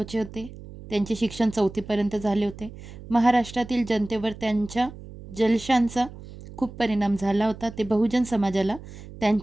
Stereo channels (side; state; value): right; noise; hum, 15 dB below the sound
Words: होते. त्यांचे शिक्षण 4थीपर्यंत झाले होते. महाराष्ट्रातील जनतेवर त्यांच्या जलशांचा खूप परिणाम झाला होता. ते बहुजन समाजाला